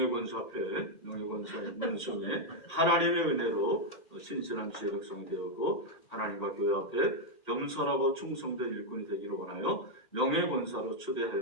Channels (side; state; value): right; late; 1.8 ms